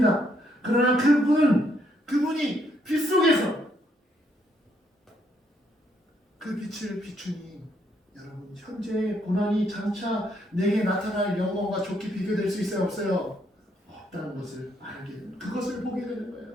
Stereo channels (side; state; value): both; normal; correlation 0.73